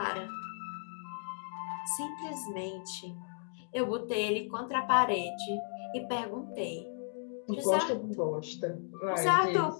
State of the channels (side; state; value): right; silent; digital silence